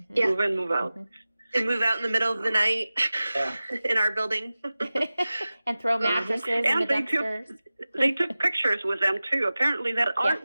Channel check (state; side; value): inverted; both; correlation -0.96